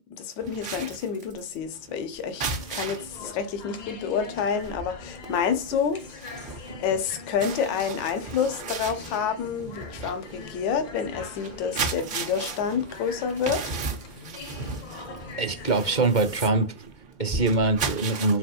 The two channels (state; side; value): late; right; 2.2 ms